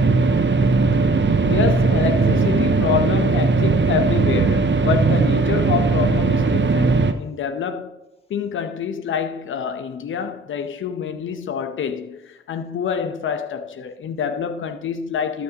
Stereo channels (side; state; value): both; normal; correlation 0.50